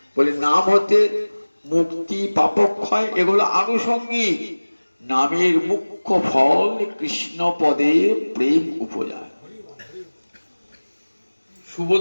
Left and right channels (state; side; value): inverted; both; correlation -1.00